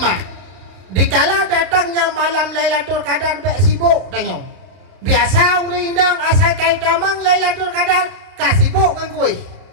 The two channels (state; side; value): late; left; 32 ms